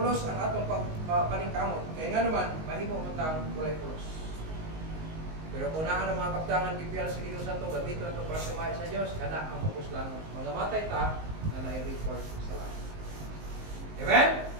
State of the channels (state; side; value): late; left; 19 ms